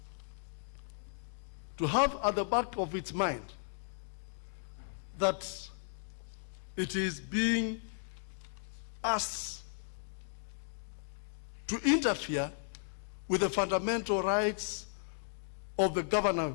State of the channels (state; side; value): silent; right; digital silence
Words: To have at the back of its mind that it is being asked to interfere with the fundamental rights of the Governor